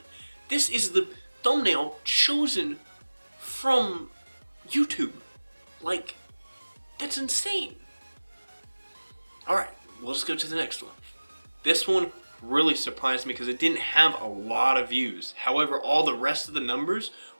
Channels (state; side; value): inverted; both; correlation -1.00